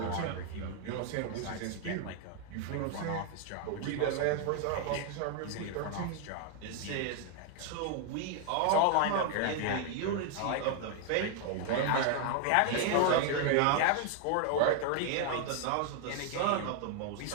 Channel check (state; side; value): different; both; correlation 0.00